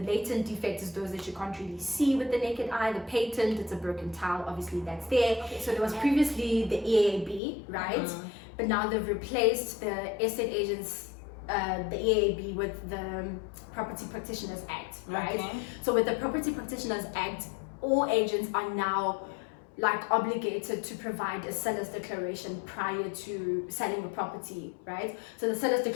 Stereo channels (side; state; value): right; drops out; at 7.4 s